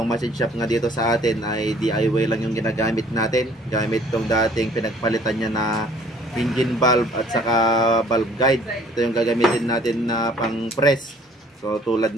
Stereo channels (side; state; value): both; normal; correlation 0.56